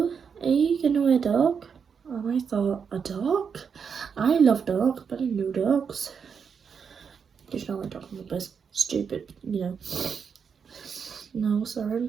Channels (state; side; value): quieter; left; 6.5 dB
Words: are you gonna wear a dog? And I thought, a dog? I love dogs, but I know dogs. There's no like talking about this stupid, you know. No, sorry, I